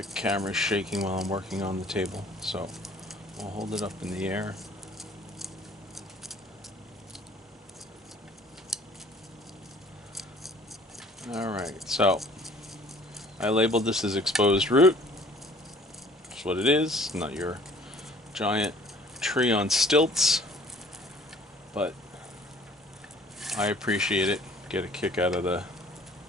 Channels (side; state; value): both; normal; correlation 0.54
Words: camera's shaking while I'm working on the table, so I'll hold it up in the air. Alright, so I labeled this as exposed root. That's what it is, not your giant tree on stilts, but I appreciate it. Get a kick out of the